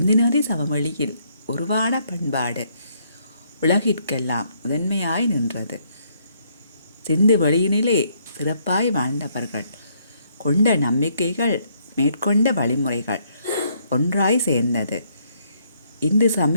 நதி சமவெளியில் உருவான பண்பாடு உலகிற்கெல்லாம் முதன்மையாய் நின்றது. சிந்து வெளியினிலே சிறப்பாய் வாழ்ந்தவர்கள் கொண்ட நம்பிக்கைகள் மேற்கொண்ட வழிமுறைகள் ஒன்றாய் சேர்ந்தது. இந்து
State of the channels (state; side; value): inverted; both; correlation -0.70